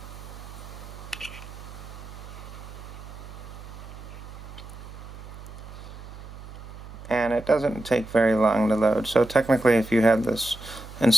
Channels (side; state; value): right; noise; hum, 14 dB below the sound